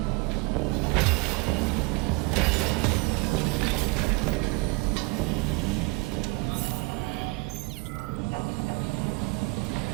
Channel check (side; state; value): left; quieter; 26.4 dB